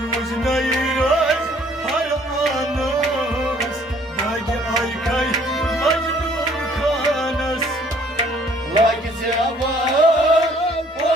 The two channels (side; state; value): both; normal; correlation 0.59